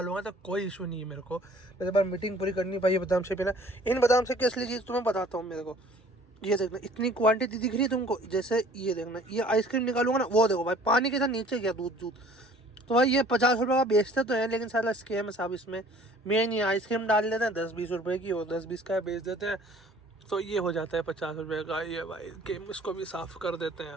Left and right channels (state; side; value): normal; both; correlation 0.52